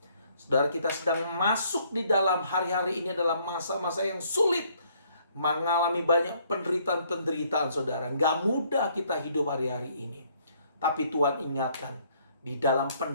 Saudara, kita sedang masuk di dalam hari-hari ini adalah masa-masa yang sulit, mengalami banyak penderitaan-penderitaan, saudara. Gak mudah kita hidup hari-hari ini. Tapi Tuhan ingatkan, Di dalam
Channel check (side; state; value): both; inverted; correlation -0.65